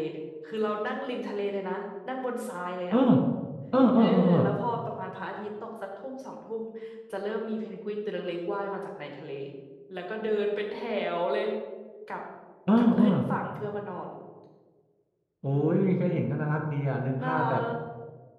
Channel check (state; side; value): identical; both; correlation 1.00